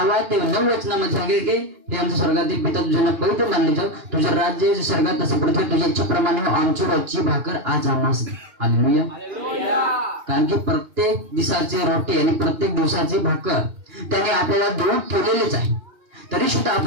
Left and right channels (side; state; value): left; late; 2.9 ms